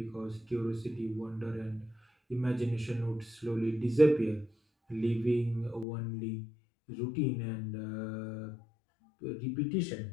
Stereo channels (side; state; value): right; drops out; at 5.9 s